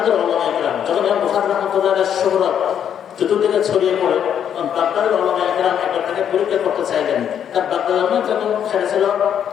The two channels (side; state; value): right; quieter; 9.0 dB